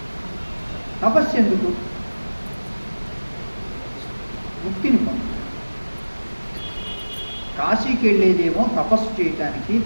తపస్సు ఎందుకు? ముక్తిని పొందాలి. కాశీకి వెళ్ళేదేమో తపస్సు చేయటానికి,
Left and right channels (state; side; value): inverted; both; correlation -1.00